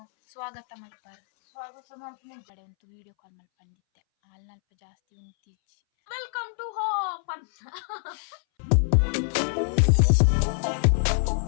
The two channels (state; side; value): silent; right; 61 dB below the other